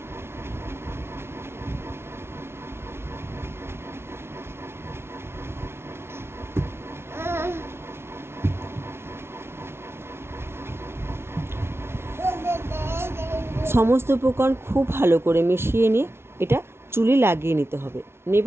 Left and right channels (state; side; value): late; left; 0.12 ms